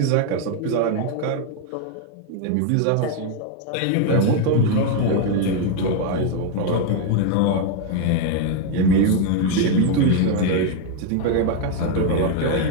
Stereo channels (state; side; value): different; both; correlation 0.01